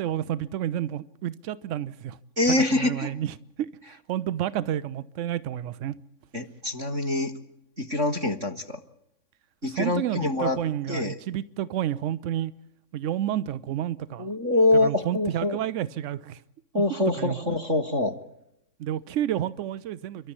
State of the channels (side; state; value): left; late; 3.6 ms